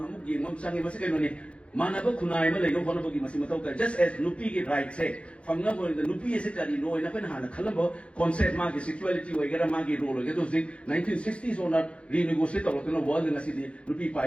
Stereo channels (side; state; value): right; late; 0.060 ms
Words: Mamsang Masakoni, Manaba Kunaima, like no Honoboki Masimatoka, just as Nupi right say, from number the Nupi is it that you know in a Penhana, Colombo, concept market, sexuality, or get a market role, get those 1960s or not renegotiate or no world in a city, Nupi